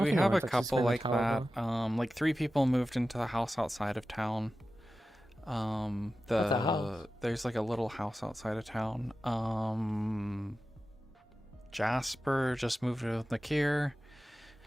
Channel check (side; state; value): both; normal; correlation 0.94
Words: think have a anyone's actually couple sleeping in like the tower, that. Like 3 people moved into the house outside of town. What's a house? There's like a little house outside of town. Jasper just moved with Nakir.